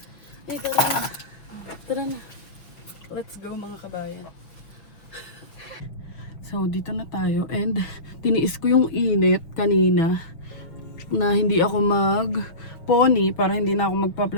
Ay, tara na. Tara na. Let's go mga kabayan. So, dito na tayo. And, tiniis ko yung init kanina na hindi ako mag-pony para hindi na ako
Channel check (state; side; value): late; right; 6.0 ms